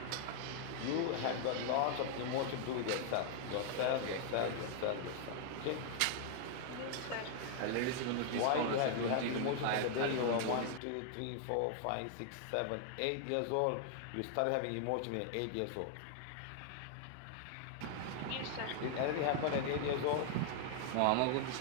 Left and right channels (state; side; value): different; both; correlation 0.00